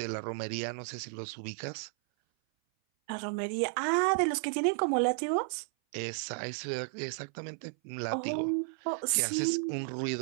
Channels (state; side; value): silent; left; 56 dB below the other